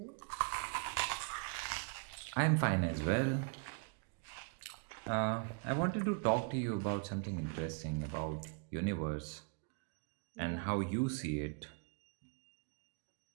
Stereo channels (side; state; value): left; quieter; 34.9 dB